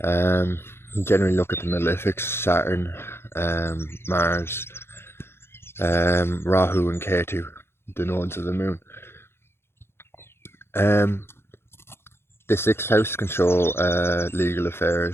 You generally look at the malefics: Saturn, Mars, Rahu and Ketu, the nodes of the moon. The 6th house can show legal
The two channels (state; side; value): late; right; 0.12 ms